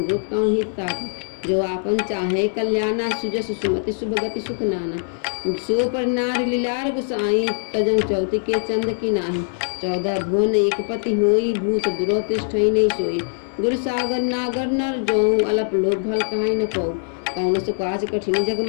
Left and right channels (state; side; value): silent; right; 63 dB below the other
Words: कौन हित ताता। जो आपन चाहे कल्याणा, सुजस सुमति शुभ गति सुख नाना। सो पर नार लीलार गुसाई, तजं चौति के चंद की नाही। 14 भुवन एक पति होई, भूत दुरोतिष्ठई नहीं सोई। गुरु सागर नागर नर जो, अलप लोभ भल कहाई न को। कौन सो काज कठिन जग